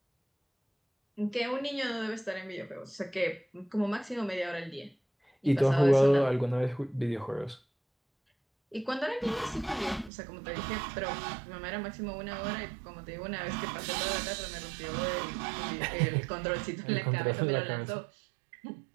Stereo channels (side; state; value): left; drops out; at 10.1 s